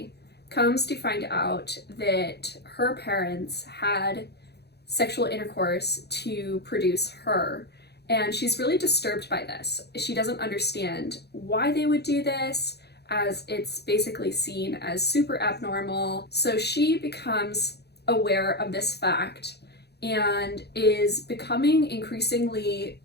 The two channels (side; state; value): right; late; 0.48 ms